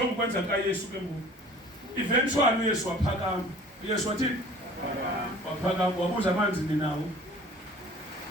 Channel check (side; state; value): both; normal; correlation 0.48